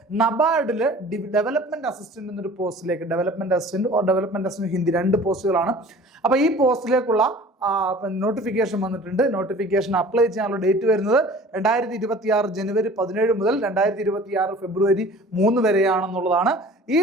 നബാർഡിൽ ഡെവലപ്മെന്റ് അസിസ്റ്റന്റ് എന്നൊരു പോസ്റ്റിലേക്ക്, ഡെവലപ്മെന്റ് അസിസ്റ്റന്റ് ഹിന്ദി 2 പോസ്റ്റുകളാണ്. അപ്പോൾ ഈ പോസ്റ്റിലേക്കുള്ള നോട്ടിഫിക്കേഷൻ വന്നിട്ടുണ്ട്. നോട്ടിഫിക്കേഷൻ അപ്ലൈ ചെയ്യാനുള്ള ഡേറ്റ് വരുന്നത് 2026 ജനുവരി 17 മുതൽ 2026 ഫെബ്രുവരി 3 വരെയാണെന്നുള്ളതാണ്.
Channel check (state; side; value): normal; both; correlation 0.45